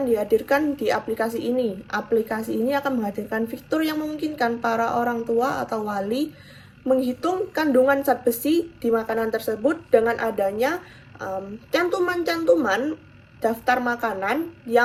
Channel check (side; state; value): both; identical; correlation 1.00